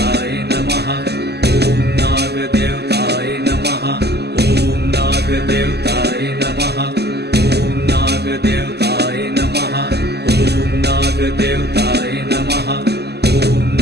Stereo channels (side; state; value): left; late; 0.48 ms